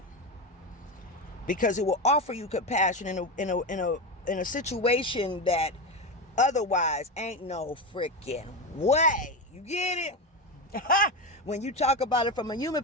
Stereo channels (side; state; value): both; normal; correlation 0.16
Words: Because it will offer you compassion in a situation that otherwise ain't no freaking way. You get it? When you talk about it from a human